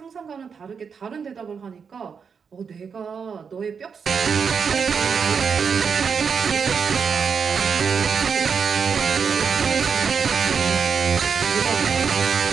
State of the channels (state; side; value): quieter; left; 6.2 dB